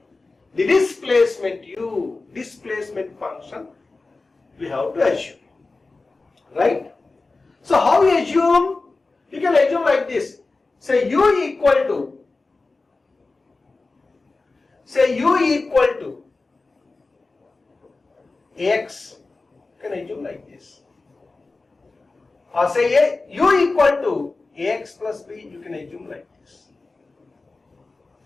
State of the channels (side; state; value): right; quieter; 3.6 dB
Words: the displacement u, displacement function we have to assume. Right? So how we assume? You can assume like this. Say u equal to x. You can assume like this. Or say u equal to ax plus b, you can assume like this.